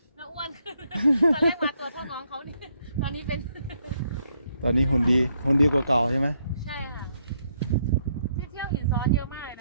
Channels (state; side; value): inverted; both; correlation -0.74